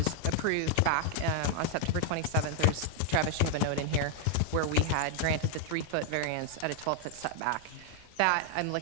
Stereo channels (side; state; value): both; different; correlation 0.00